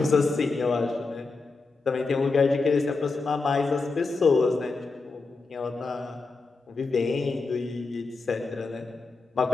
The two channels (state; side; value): quieter; right; 4.0 dB